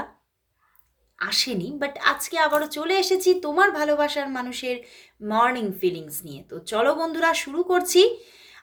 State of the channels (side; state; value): both; identical; correlation 1.00